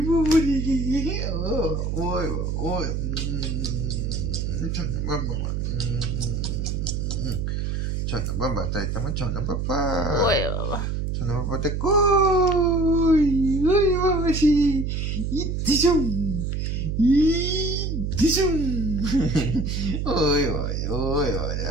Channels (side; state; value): right; noise; hum, 1 dB below the sound